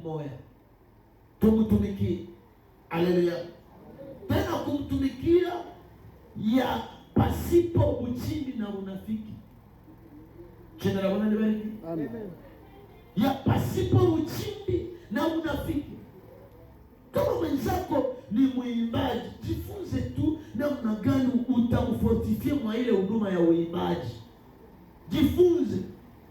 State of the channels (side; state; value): both; identical; correlation 1.00